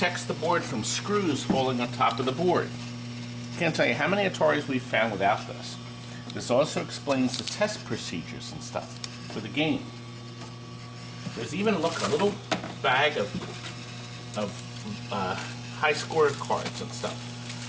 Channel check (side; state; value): both; identical; correlation 1.00